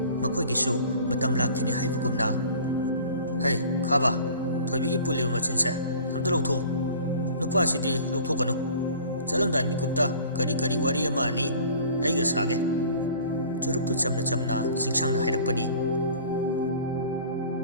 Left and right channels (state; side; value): inverted; both; correlation -0.46